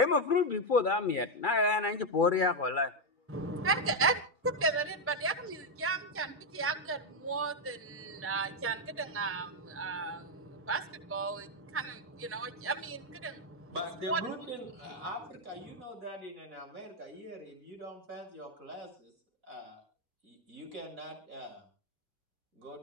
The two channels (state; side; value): normal; both; correlation 0.03